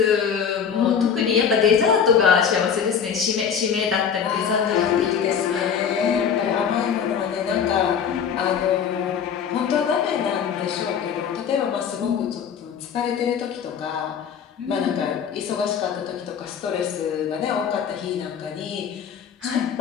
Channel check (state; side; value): quieter; right; 7.4 dB